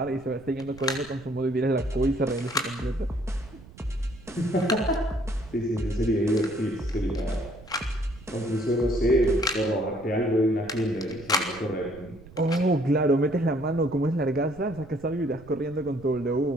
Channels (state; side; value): noise; right; rumble, 20 dB below the sound